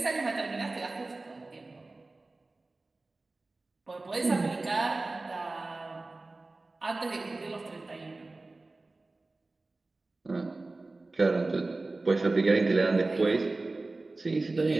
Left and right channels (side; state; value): left; quieter; 3.2 dB